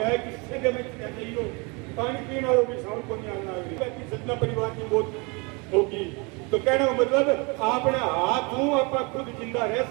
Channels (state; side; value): quieter; left; 29.9 dB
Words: किससे जब नहीं हो पानी पीना होगी, साउंड को नहीं आना होगी, सतना परिवार की मौत होगी। तो कहने का मतलब आपने हाथ हूं आप खुद जिंदा रह